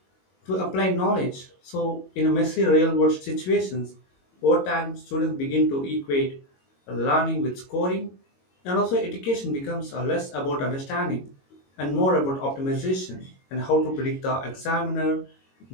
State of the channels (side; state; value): right; late; 22 ms